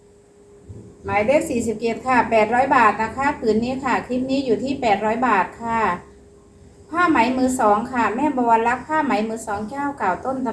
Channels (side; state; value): both; identical; correlation 1.00